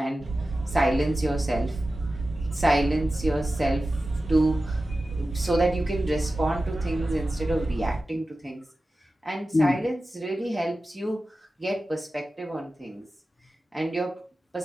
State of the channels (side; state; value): both; normal; correlation 0.94